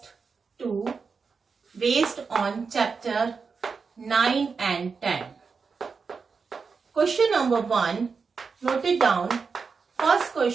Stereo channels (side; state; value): left; quieter; 5.2 dB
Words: 2 based on chapter 9 and 10. Question number 1, note it down. First